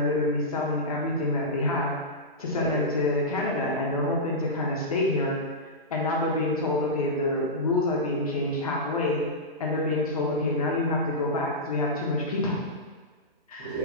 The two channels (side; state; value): both; normal; correlation -0.12